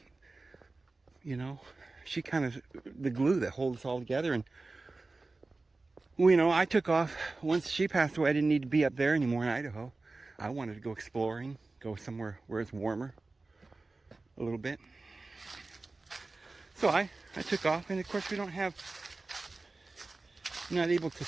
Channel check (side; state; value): left; quieter; 3.5 dB